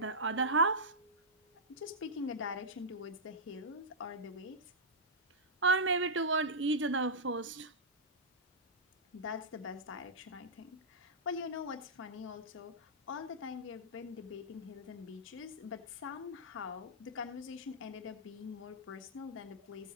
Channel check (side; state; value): both; normal; correlation -0.11